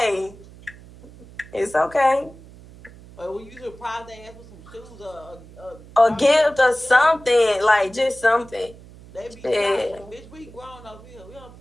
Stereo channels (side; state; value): right; noise; hum, 20 dB below the sound